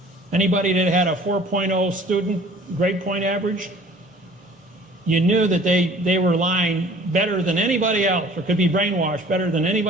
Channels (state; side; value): normal; both; correlation 0.50